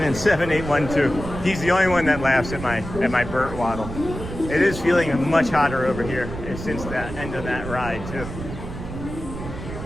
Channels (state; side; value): noise; right; rumble, 9 dB below the sound